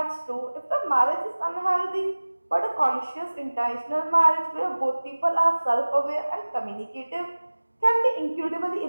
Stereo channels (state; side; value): inverted; both; correlation -1.00